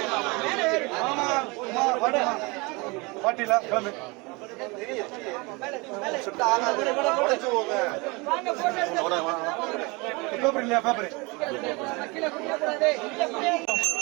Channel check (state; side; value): quieter; left; 26.8 dB